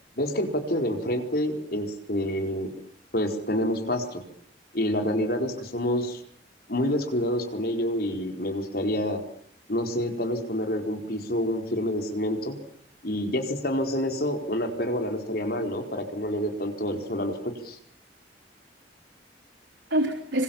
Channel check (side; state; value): both; normal; correlation 0.30